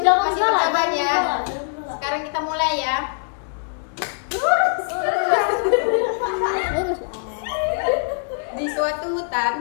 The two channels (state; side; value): silent; right; digital silence